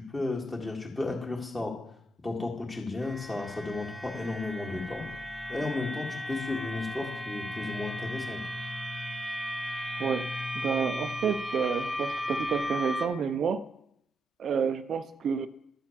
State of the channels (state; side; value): normal; both; correlation 0.81